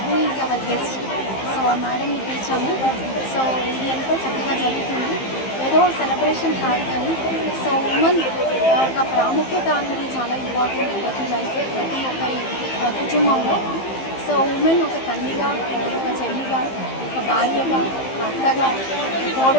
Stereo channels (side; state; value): right; late; 15 ms